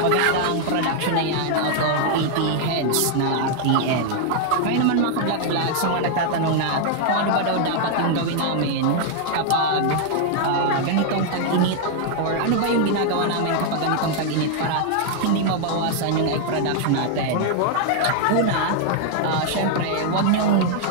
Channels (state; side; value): different; both; correlation 0.00